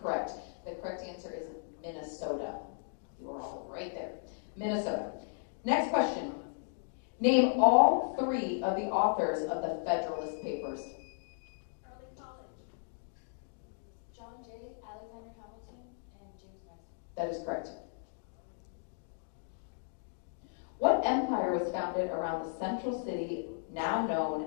The correct answer is Minnesota. You are all right there. Minnesota. Next question. Name all three of the authors of the Federalist Papers. Early college. John Jay, Alexander Hamilton, and James Madison. That is correct. What empire was founded around the central city now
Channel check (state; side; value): silent; right; digital silence